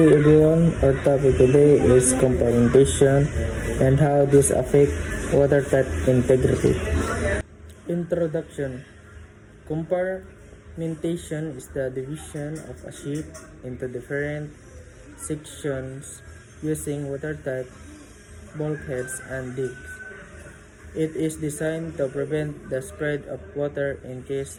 everyone. Our topic today is compartmentation and how this affect watertight integrity. Introduction. Compartmentation is the division of a ship into different sections using watertight bulkheads and digs. It is designed to prevent the spread of water in case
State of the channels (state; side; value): identical; both; correlation 1.00